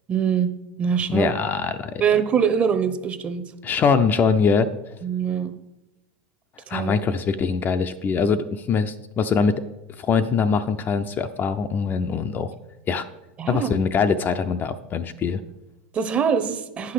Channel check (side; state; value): both; normal; correlation 0.52